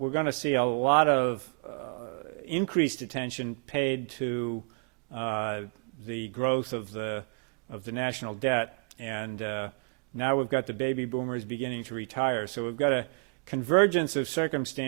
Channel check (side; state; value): left; quieter; 39.1 dB